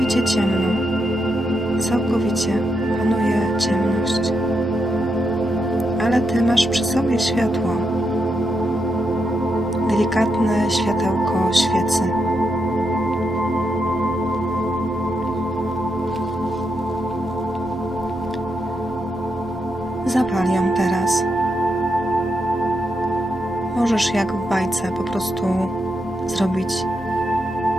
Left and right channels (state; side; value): normal; both; correlation 0.83